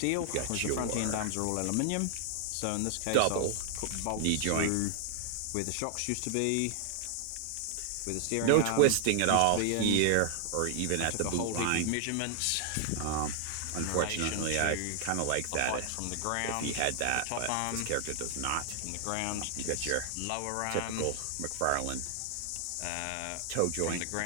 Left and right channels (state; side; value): different; both; correlation 0.00